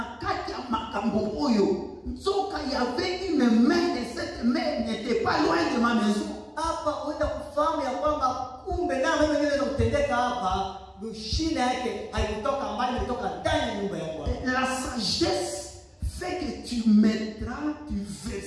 kati ya makambo oyo nzoka y avait une main et cette main n'était pas loin de ma maison. Hapa uenda kufahamu ya kwamba kumbe na mimi niweza kutendeka hapa, mshina yake haikutoka mbali, ilitoka ndani ya nyumba yako. La sagesse fait que tu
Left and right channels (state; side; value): identical; both; correlation 1.00